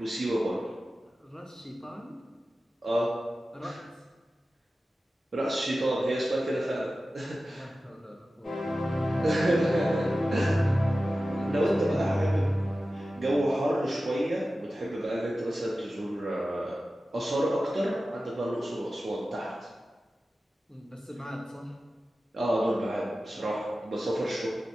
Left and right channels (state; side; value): normal; both; correlation 0.95